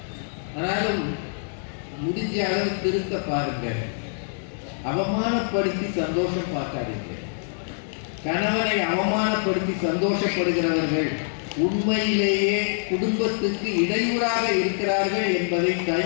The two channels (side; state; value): right; silent; digital silence